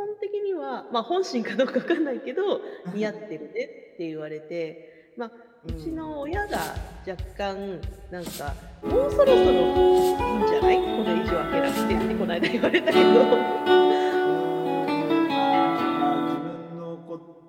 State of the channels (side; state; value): both; identical; correlation 1.00